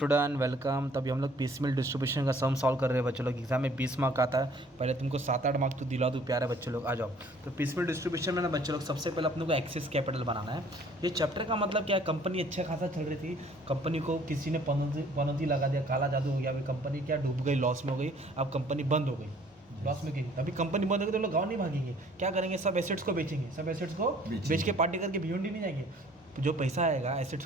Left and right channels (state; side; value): normal; both; correlation 0.56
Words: welcome. तभी हम लोग पीसमेल डिस्ट्रीब्यूशन का सम सॉल्व कर रहे हैं बच्चों लोग। एग्जाम में 20 मार्क आता है, पहले तुमको 7-8 मार्क तो दिला दूँ प्यारे बच्चों लोग। आ जाओ। तो पीसमेल डिस्ट्रीब्यूशन में ना बच्चों लोग सबसे पहले अपने को एक्सेस कैपिटल बनाना है। ये चैप्टर का मतलब क्या है, कंपनी अच्छा खासा चल रही थी, कंपनी को किसी ने पनौती लगा दिया, काला जादू हो गया, अभी कंपनी क्या डूब गई, लॉस में हो गई, अब कंपनी बंद हो गई, लॉस में गई। अभी कंपनी बंद हो गई तो लोग गाँव नहीं भागेंगे, क्या करेंगे, सब एसेट्स को बेचेंगे, सब एसेट्स को बेच के पार्टी करके भिवंडी नहीं जाएंगे। जो पैसा आएगा एसेट्स